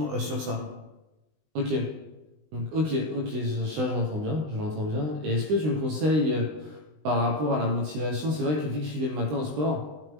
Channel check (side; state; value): left; late; 20 ms